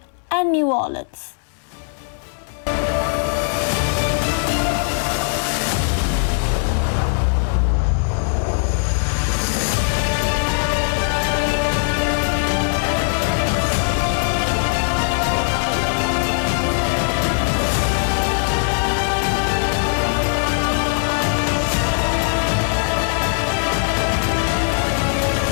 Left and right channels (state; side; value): silent; right; 66 dB below the other